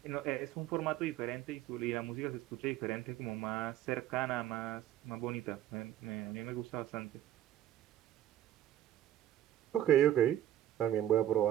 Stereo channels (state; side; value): quieter; left; 12.1 dB